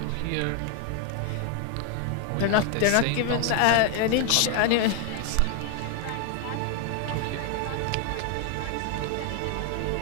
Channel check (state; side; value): different; both; correlation 0.00